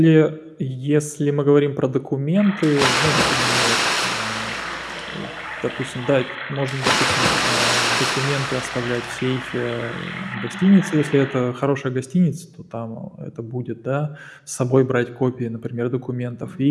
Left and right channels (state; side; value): identical; both; correlation 1.00